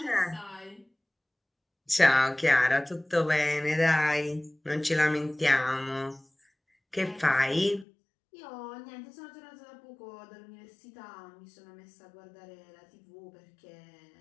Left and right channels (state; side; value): drops out; right; at 7.9 s